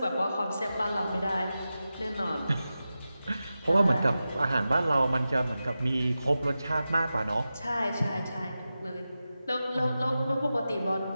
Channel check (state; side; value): inverted; both; correlation -0.93